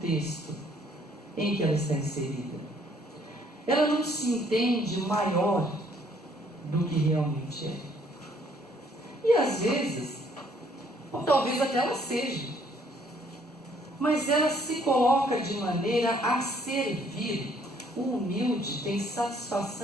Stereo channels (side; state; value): both; normal; correlation 0.64